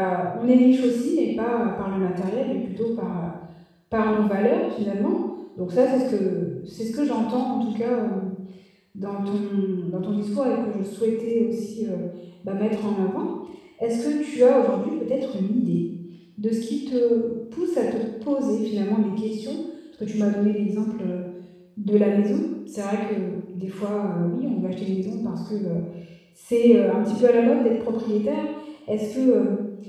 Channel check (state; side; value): identical; both; correlation 1.00